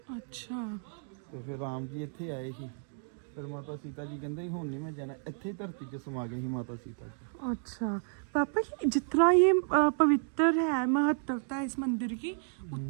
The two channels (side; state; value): left; silent; 56 dB below the other